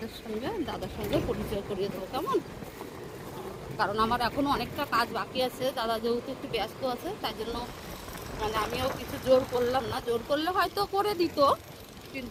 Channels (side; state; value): both; identical; correlation 1.00